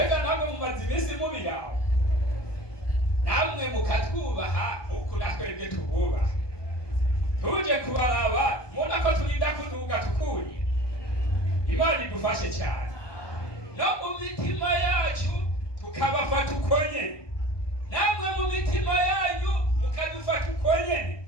namwe mumaze iminsi mubiraho, namwe mukatwubaha nk'uko natwebwe tububaha. Tuje kubaraba mubona ko turinda kuduga tukuriye. Imana idufashe cyane. No mu mitima yacu tukabafata uko nyene, namwe mu mitima yanyu mukadufata uko nyene,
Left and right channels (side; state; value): right; late; 1.2 ms